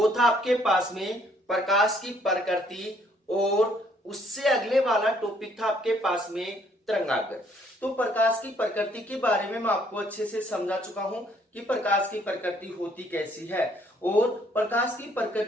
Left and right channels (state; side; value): normal; both; correlation 0.65